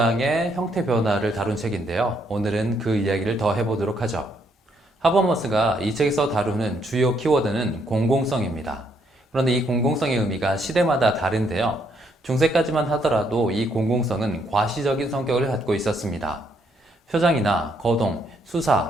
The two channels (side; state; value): both; normal; correlation 0.72